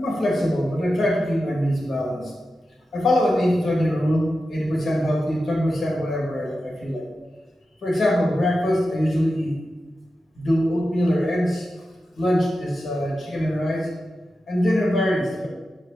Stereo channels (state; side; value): normal; both; correlation 0.91